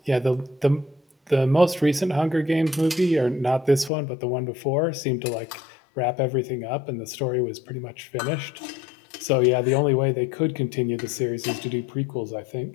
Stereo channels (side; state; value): right; drops out; at 3.9 s